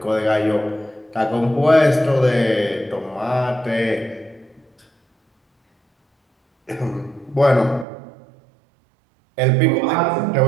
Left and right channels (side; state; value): left; drops out; at 7.9 s